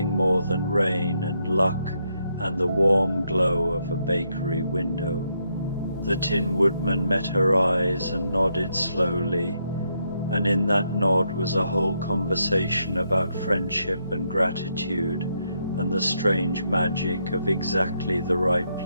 more than rain and luck and the warm glow of a bakery window. The Tin Woodman met her eyes and nodded slowly, and in that nod was a whole conversation about friendship and gratitude and the strange magic of exactly the right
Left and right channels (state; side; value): inverted; both; correlation -0.78